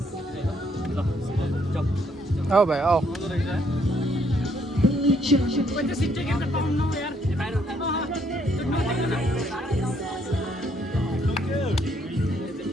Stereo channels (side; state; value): both; normal; correlation 0.69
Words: आऊ भाइ आऊ